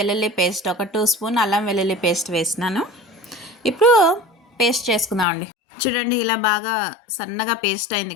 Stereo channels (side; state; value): right; drops out; at 5.2 s